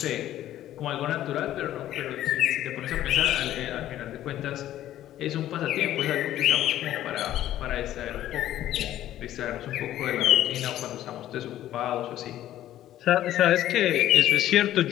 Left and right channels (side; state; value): right; quieter; 12.9 dB